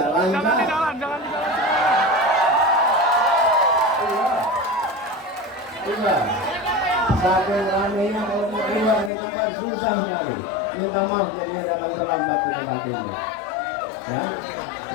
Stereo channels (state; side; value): drops out; right; at 9.1 s